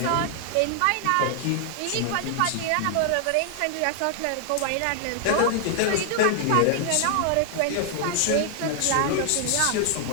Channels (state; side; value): different; both; correlation 0.00